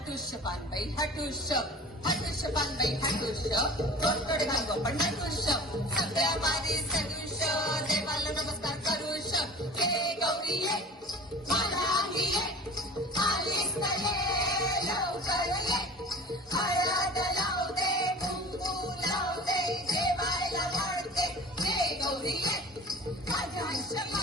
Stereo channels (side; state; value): both; normal; correlation 0.39